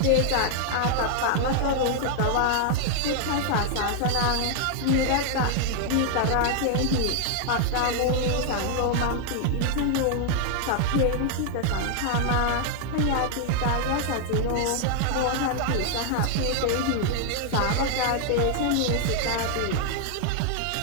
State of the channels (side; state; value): both; different; correlation 0.00